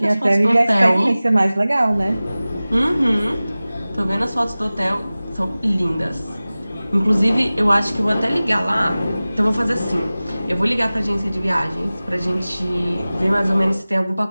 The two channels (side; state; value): both; inverted; correlation -0.98